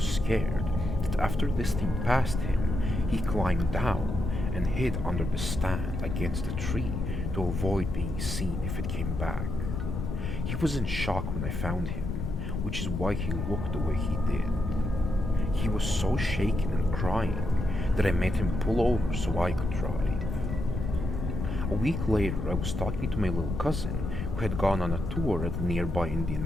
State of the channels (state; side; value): noise; left; rumble, 3 dB below the sound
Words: that after this thing passed him, he climbed down and hid under the stand against a tree to avoid being seen if it came back. He was in shock when I found him, which is why he looked the way he did. He was so shaken and crying that I made him pull over so I could drive. A week later, I was talking to my little cousin who had gone on a tour at the nearby Indian